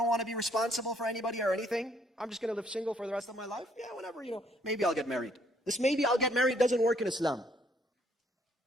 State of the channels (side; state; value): both; normal; correlation 0.67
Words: want to be responsible for anybody or anything. I'm just going to live single for the rest of my life. Yeah, whenever, maybe I'll get married. This maybe I'll get married doesn't work in Islam.